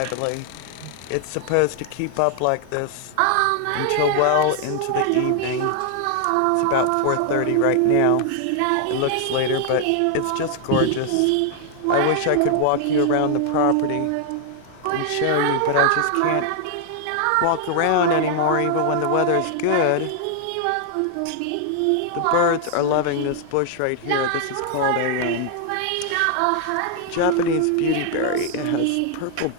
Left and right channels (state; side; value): different; both; correlation 0.00